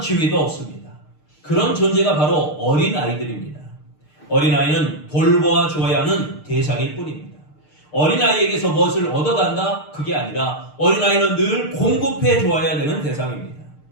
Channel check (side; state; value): right; late; 6.6 ms